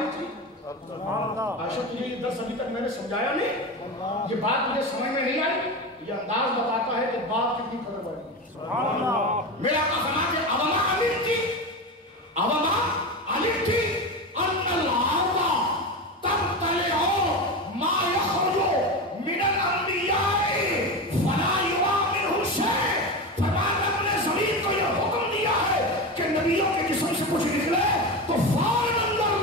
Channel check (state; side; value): normal; both; correlation 0.21